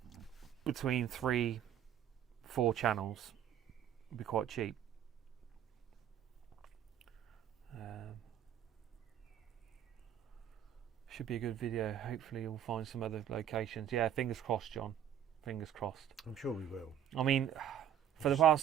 between 3-4 channels would be quite cheap. Should be a good video. Hopefully we'll find some other locations. Yeah, fingers crossed, John. Fingers crossed. I'm sure we will. I mean, for the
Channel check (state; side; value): quieter; left; 10.1 dB